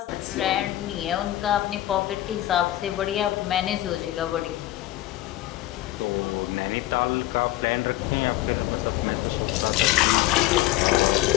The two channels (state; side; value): quieter; right; 15.2 dB